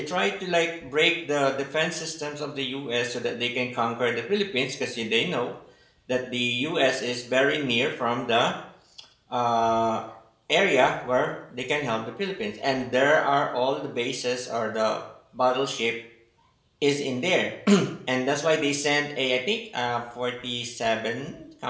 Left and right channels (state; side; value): identical; both; correlation 1.00